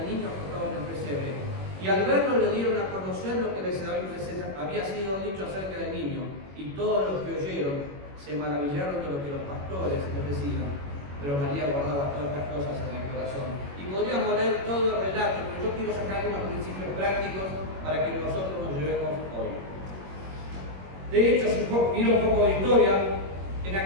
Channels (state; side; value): late; left; 21 ms